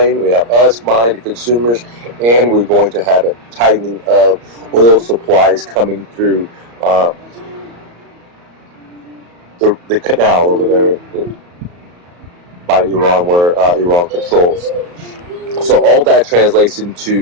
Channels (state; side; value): late; left; 34 ms